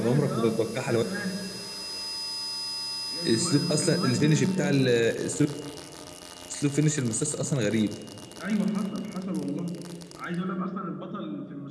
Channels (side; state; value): both; identical; correlation 1.00